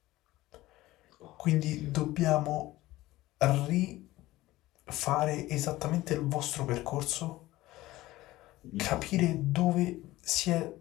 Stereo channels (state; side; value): quieter; right; 17.3 dB